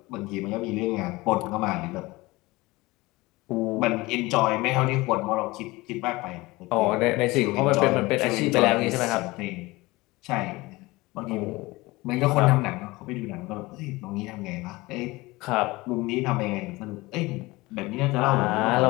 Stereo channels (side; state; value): right; quieter; 21.4 dB